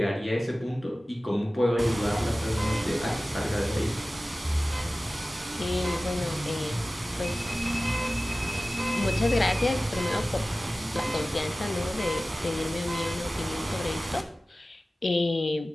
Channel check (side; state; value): both; normal; correlation 0.97